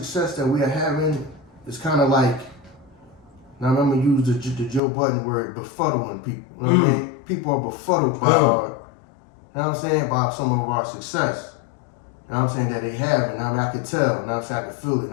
that we are having is kind of like. Now I'm gonna use the Joe Budden word, befuddling people. You know what I mean? People are befuddled by our, you know what I'm saying, by some of our success. You know what I'm saying, that they have. And I mean, I can tell. You know what I'm saying, I can feel it.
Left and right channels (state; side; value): drops out; right; at 4.8 s